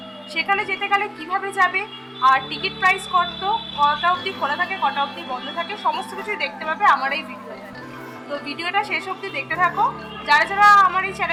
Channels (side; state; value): both; identical; correlation 1.00